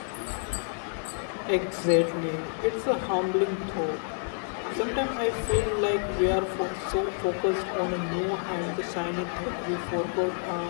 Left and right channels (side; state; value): right; silent; 59 dB below the other